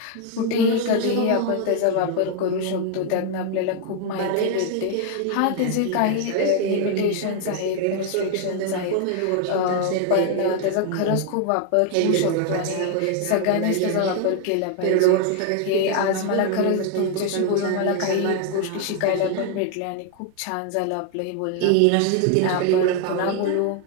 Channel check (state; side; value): different; both; correlation 0.00